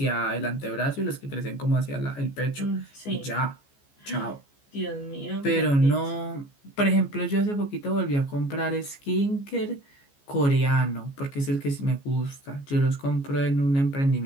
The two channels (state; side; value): late; right; 14 ms